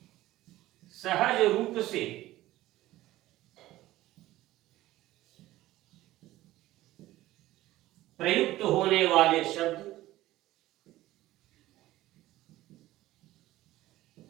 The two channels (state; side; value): quieter; left; 16.1 dB